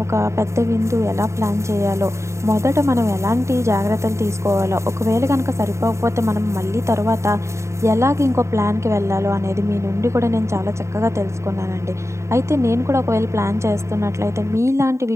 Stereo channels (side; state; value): left; late; 0.14 ms